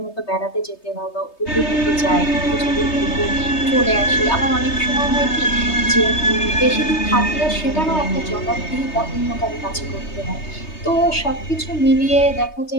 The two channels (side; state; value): right; late; 3.2 ms